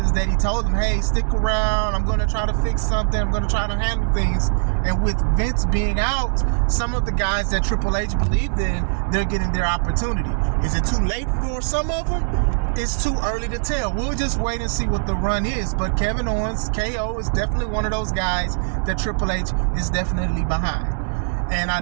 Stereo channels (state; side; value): silent; left; digital silence